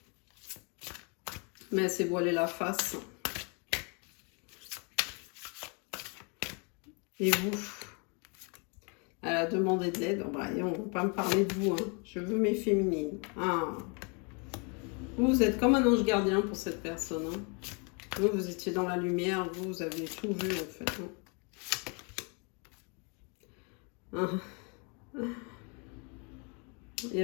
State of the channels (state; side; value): quieter; right; 34.5 dB